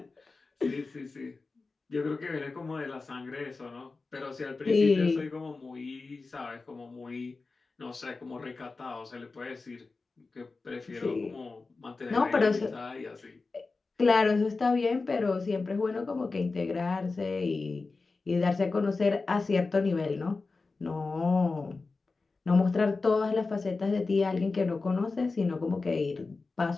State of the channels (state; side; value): quieter; right; 3.9 dB